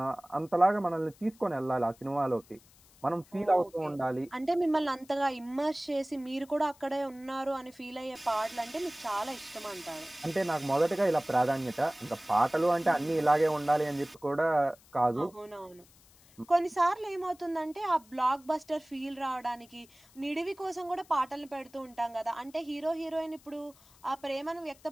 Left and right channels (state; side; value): noise; left; hiss, 27 dB below the sound